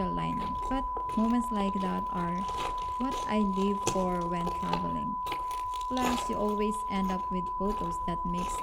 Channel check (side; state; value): both; identical; correlation 1.00